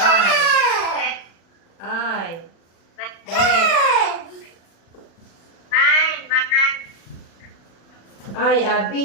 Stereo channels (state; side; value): late; right; 36 ms